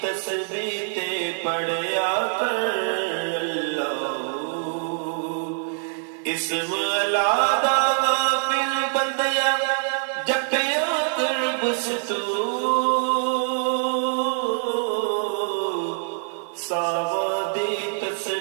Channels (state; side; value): silent; left; digital silence